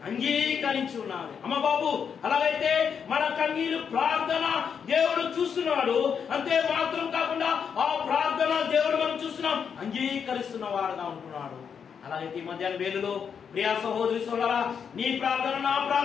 అంగీకరించి ఉన్నది. అమ్మ బాబు, అలాగైతే మన కన్నీరు ప్రార్థన దేవుడు చూస్తున్నాడు. అంతే మాత్రం కాకుండా ఆ ప్రార్థన దేవుడు మనం చూస్తున్నాం, అంగీకరిస్తున్న వాడుగా ఉంటున్నాడు. అలాగైతే ఈ మధ్యాహ్న వేళలో ప్రియా సహోదరి సోదరా, నీ ప్రార్థన నా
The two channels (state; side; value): quieter; right; 7.0 dB